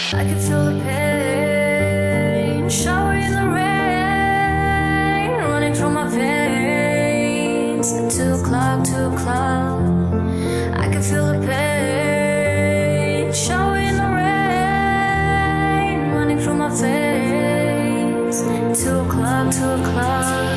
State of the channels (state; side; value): identical; both; correlation 1.00